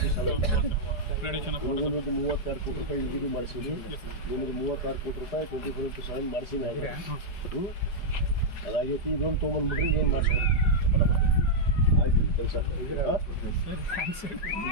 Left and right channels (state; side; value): late; right; 4.9 ms